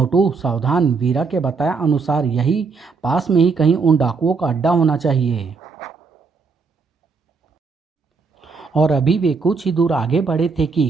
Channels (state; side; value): quieter; left; 4.8 dB